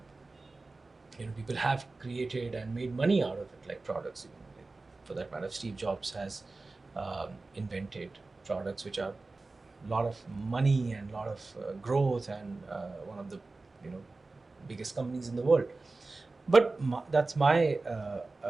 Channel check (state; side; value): quieter; left; 3.5 dB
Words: people have created and made money out of it, like products. Even like, for that matter, Steve Jobs has invented products which are a lot of money and a lot of growth, and one of the you know biggest companies in the world. But that's my